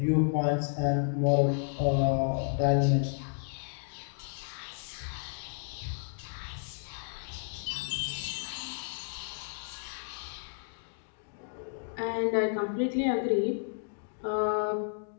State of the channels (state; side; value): silent; right; digital silence